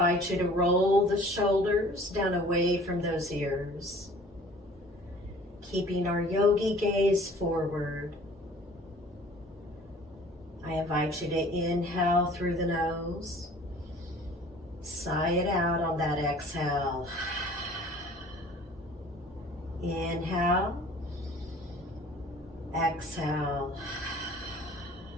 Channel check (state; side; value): normal; both; correlation 0.49